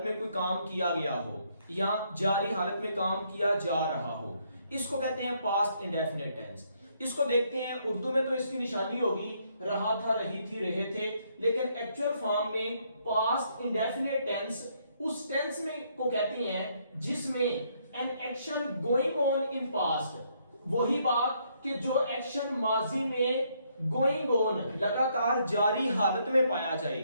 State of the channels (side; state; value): both; inverted; correlation -0.71